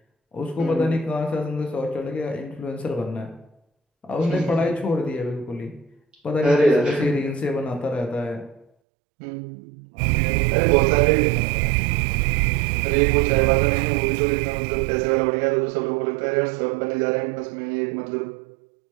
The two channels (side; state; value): left; drops out; at 8.7 s